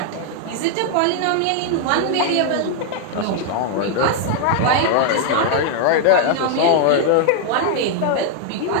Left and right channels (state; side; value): different; both; correlation 0.00